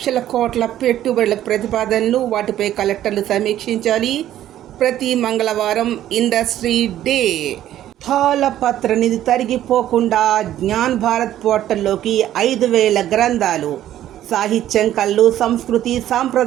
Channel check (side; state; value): left; quieter; 12.3 dB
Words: కోట్ల పెట్టుబడుల ప్రతిపాదనలు, వాటిపై కలెక్టర్లు సమీక్షించాలి. ప్రతి మంగళవారం ఇండస్ట్రీ డే. తాళపత్ర నిధి తరిగిపోకుండా జ్ఞాన్ భారత్ పోర్టల్లోకి 5000 గ్రంథాలు. సాహిత్యం, కళలు, సంస్కృతి,